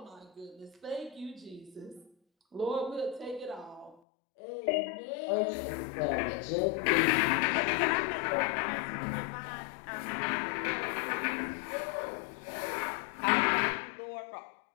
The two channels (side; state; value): right; drops out; at 4.0 s